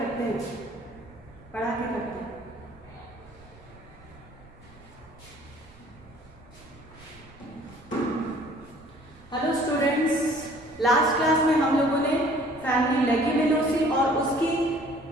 हैं, पढ़ा के करते हैं। हेलो स्टूडेंट्स, लास्ट क्लास में हम लोगों ने फैमिली लेग्यूमिनोसी और उसकी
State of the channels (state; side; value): noise; right; rumble, 23 dB below the sound